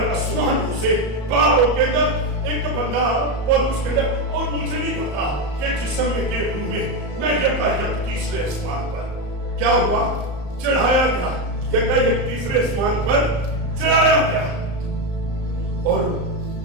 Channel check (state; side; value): late; left; 34 ms